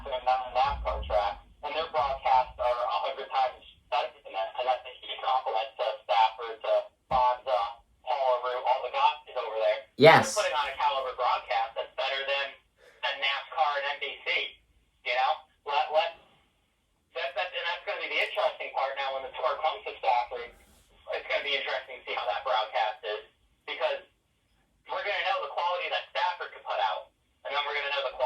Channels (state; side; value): identical; both; correlation 1.00